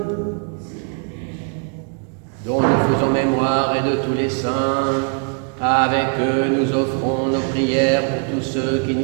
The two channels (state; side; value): quieter; left; 39.6 dB